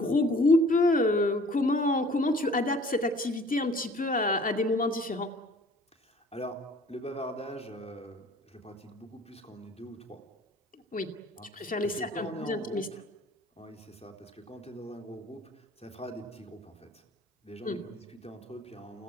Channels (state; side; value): normal; both; correlation 0.52